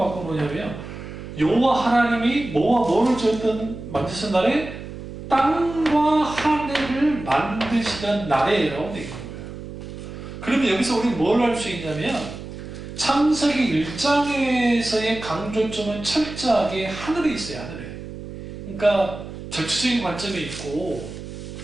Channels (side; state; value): right; noise; hum, 11 dB below the sound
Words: 여호와 하나님이 뭐와 뭐를 만드신 날에 땅과 하늘을 만드시던 날에라고 되어 있는 거예요. 그러면 여기서 우리는 뭘 알 수 있냐면 창세기 1장에서의 강조점은 철저하게 하늘에 있어요. 하늘에. 그러니까 전체적인 관점이